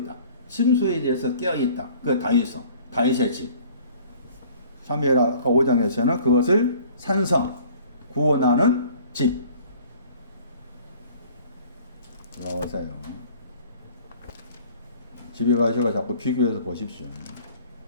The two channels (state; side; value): inverted; both; correlation -0.52